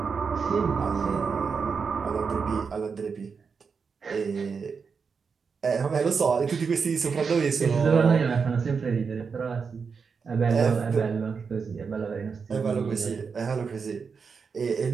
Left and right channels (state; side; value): quieter; left; 5.6 dB